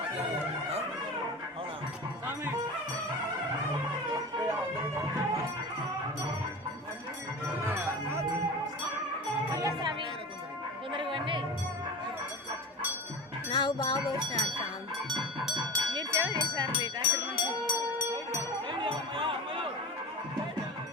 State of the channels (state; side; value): normal; both; correlation 0.30